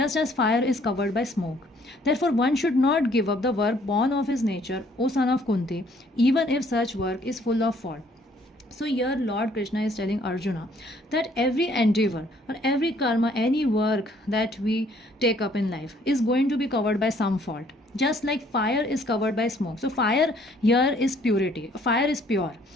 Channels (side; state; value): both; normal; correlation 0.62